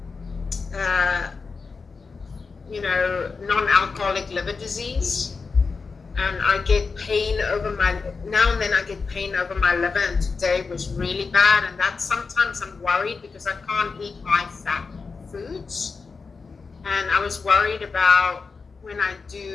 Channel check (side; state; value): right; quieter; 4.7 dB